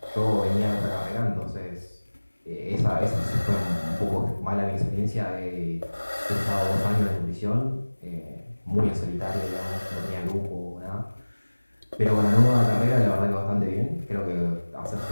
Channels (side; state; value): both; inverted; correlation -1.00